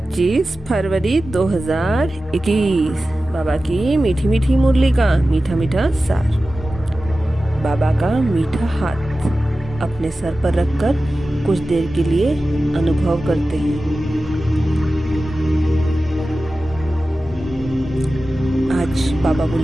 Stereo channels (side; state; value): both; normal; correlation 0.95